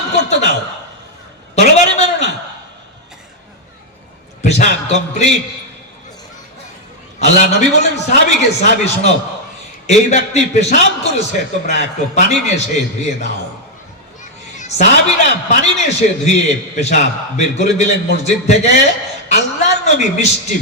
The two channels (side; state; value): both; normal; correlation 0.00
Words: করতে দাও, তরবারি মেরো না। পেশাব কমপ্লিট। আল্লাহ নবী বলেন সাহাবীকে, সাহাবী শোনো, এই ব্যক্তি পেশাব করেছে, তোমরা একটু পানি নিয়ে এসে ধুয়ে দাও। সাহাবীরা পানি নিয়ে এসে ধুয়ে পেশাব বের করে দিলেন মসজিদ থেকে। আল্লাহর নবী মিষ্টি